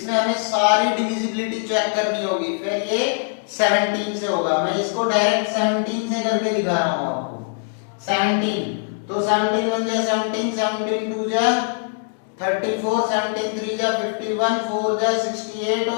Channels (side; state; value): right; silent; 64 dB below the other